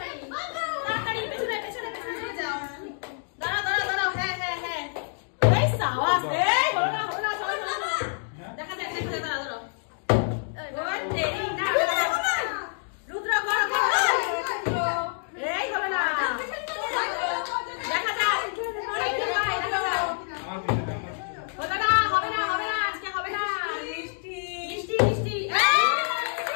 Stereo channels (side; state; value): right; silent; 60 dB below the other